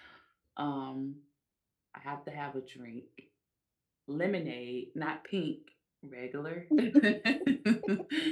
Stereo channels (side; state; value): both; identical; correlation 1.00